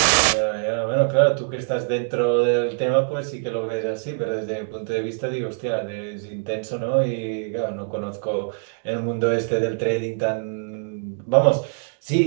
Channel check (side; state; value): left; silent; digital silence